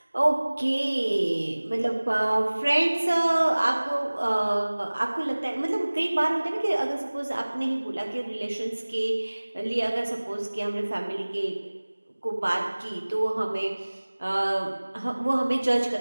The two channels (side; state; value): both; inverted; correlation -1.00